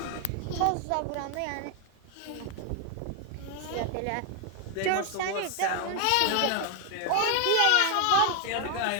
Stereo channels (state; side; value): different; both; correlation 0.01